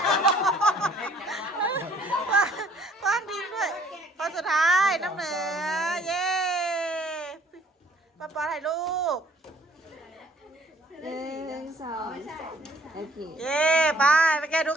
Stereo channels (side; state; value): both; normal; correlation 0.59